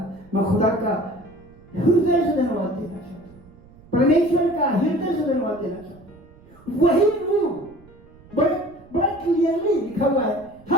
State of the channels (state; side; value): noise; right; rumble, 25 dB below the sound